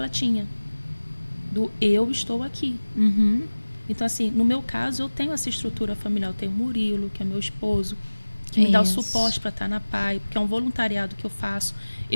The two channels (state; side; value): inverted; both; correlation -1.00